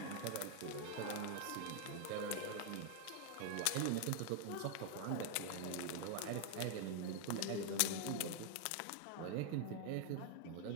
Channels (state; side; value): different; both; correlation 0.00